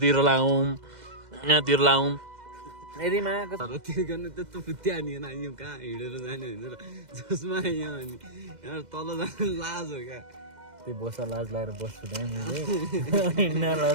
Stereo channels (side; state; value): left; late; 2.1 ms